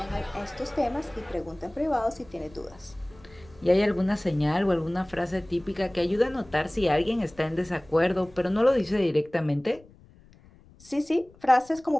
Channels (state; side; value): noise; left; rumble, 25 dB below the sound